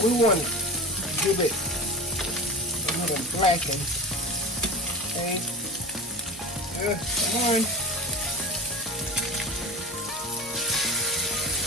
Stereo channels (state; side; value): normal; both; correlation 0.35